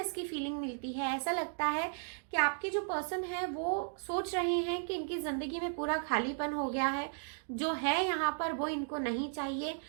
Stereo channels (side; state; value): left; silent; digital silence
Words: की फीलिंग मिलती है। ऐसा लगता है कि आपके जो पर्सन है वो सोच रहे हैं कि इनकी जिंदगी में पूरा खालीपन हो गया है, जो है यहाँ पर वो इनको नहीं चाहिए,